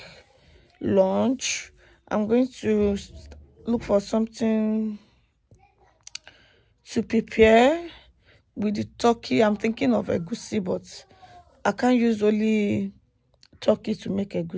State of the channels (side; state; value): both; identical; correlation 1.00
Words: lunch. I'm going to look for something to prepare with the turkey. I'm thinking of egusi, but I can't use only turkey to make